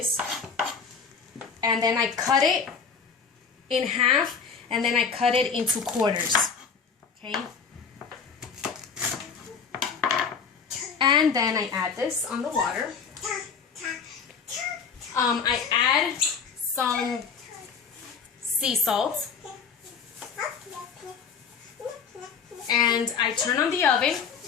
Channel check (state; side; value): quieter; right; 6.0 dB